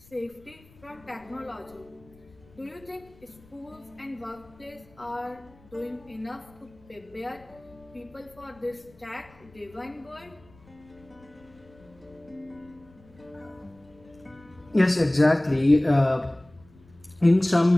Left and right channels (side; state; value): left; noise; rumble, 26 dB below the sound